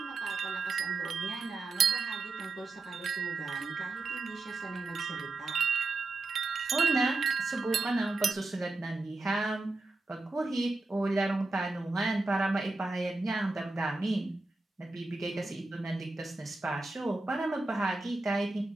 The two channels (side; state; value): left; quieter; 3.4 dB